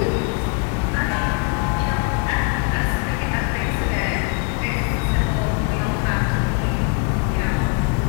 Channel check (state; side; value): quieter; right; 34.1 dB